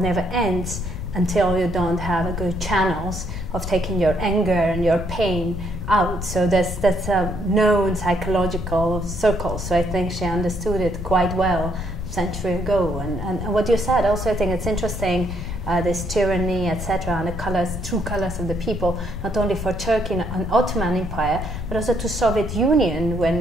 ends until you don't have a good channels of taking your anger and your pain out. So that's a known psychological circle. So I think she understood it quite well a century ago. And what you said also, I think it's interesting, this tyranny, etc., and the true colors of the people, not only for Turkey and Ottoman Empire, but also to Soviet Union.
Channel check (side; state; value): left; noise; rumble, 6 dB below the sound